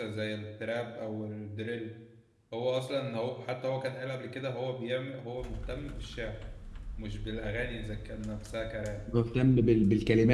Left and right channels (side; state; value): both; identical; correlation 1.00